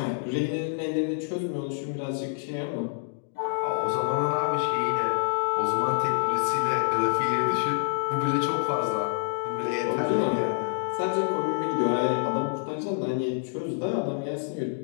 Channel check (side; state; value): right; silent; digital silence